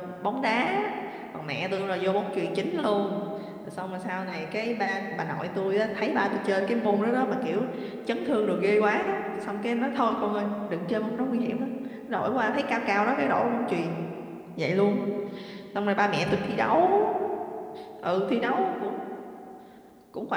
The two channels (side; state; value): both; identical; correlation 1.00